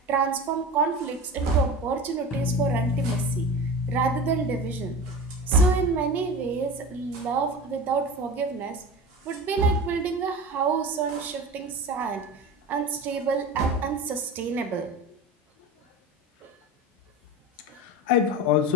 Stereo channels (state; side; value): normal; both; correlation 0.30